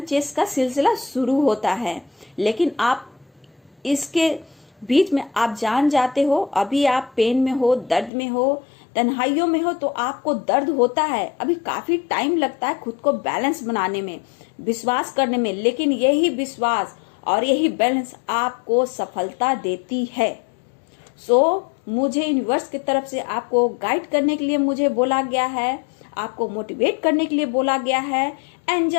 चेस का सिलसिला शुरू होता है। लेकिन आप इसके बीच में आप जान जाते हो, अभी आप पेन में हो, दर्द में हो, तन्हाइयों में हो, तो आपको दर्द होता है, अभी काफी टाइम लगता है खुद को बैलेंस बनाने में, विश्वास करने में। लेकिन यही विश्वास और यही बैलेंस आपको सफलता देती है। मुझे यूनिवर्स की तरफ से आपको गाइड करने के लिए मुझे बोला गया है, आपको मोटिवेट करने के लिए बोला गया है।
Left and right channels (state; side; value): drops out; right; at 8.1 s